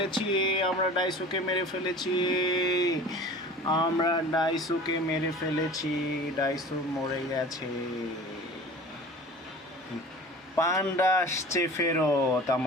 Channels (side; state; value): both; normal; correlation 0.40